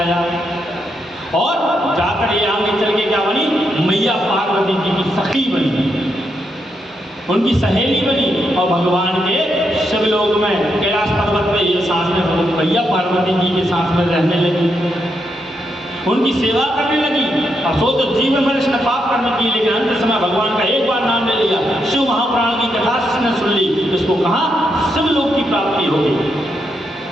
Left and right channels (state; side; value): normal; both; correlation 0.81